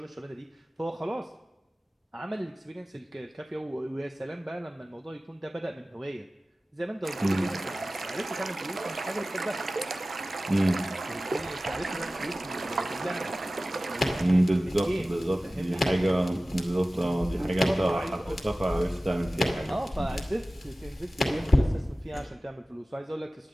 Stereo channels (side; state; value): both; normal; correlation 0.97